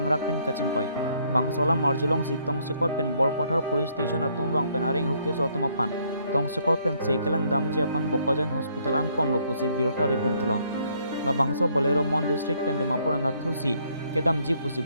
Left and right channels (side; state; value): both; inverted; correlation -0.68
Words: pen kachingkoi bangsola marjulong sitong sekor pen bor pothar police station atum wang pen aring huke so tumapan tong sekor pen sekelang damji apan bokojan hospital an pon lopusi birota ribun tulong la bangso bolero mon district pen demapur anathusi kedam ji pusi